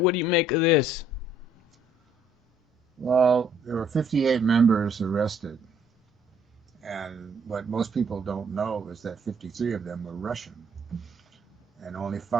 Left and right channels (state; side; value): normal; both; correlation 0.64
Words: What do you make of this? Well, there were 58 members arrested, and what most people don't know is that 53 of them were Russian, and only